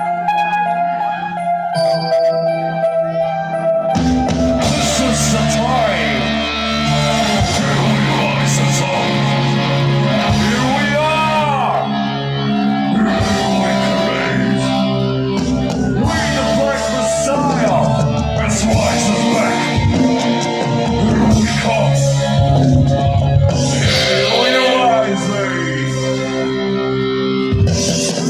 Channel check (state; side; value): identical; both; correlation 1.00